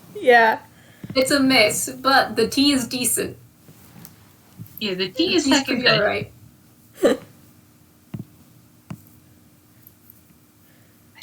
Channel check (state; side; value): identical; both; correlation 1.00